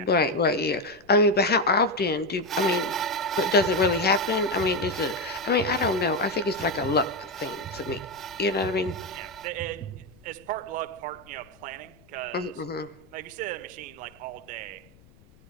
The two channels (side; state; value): left; noise; rumble, 27 dB below the sound